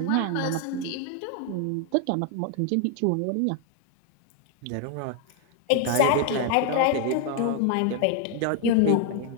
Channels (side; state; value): both; different; correlation 0.00